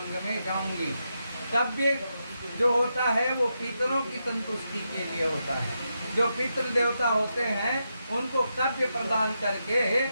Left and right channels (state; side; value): inverted; both; correlation -0.85